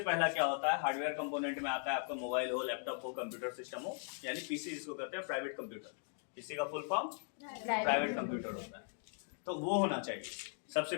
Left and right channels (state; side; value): silent; right; 52 dB below the other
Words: पहला क्या होता है, हार्डवेयर कंपोनेंट में आता है आपका मोबाइल हो, लैपटॉप हो, कंप्यूटर सिस्टम हो, यानी पीसी जिसको कहते हैं प्राइवेट कंप्यूटर। पीसी का फुल फॉर्म प्राइवेट कंप्यूटर होता है। तो वो होना चाहिए सबसे